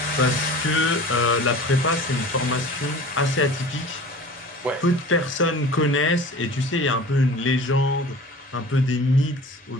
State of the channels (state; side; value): normal; both; correlation 0.41